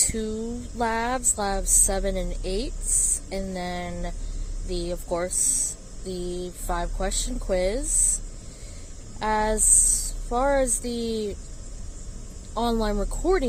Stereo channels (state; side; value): identical; both; correlation 1.00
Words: labs 7 and 8, and then of course, the 5-question quiz. As far as the online